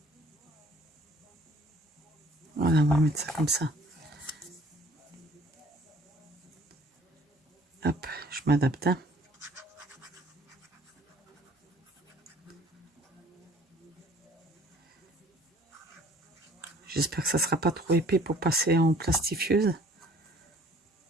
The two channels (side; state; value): both; normal; correlation 0.54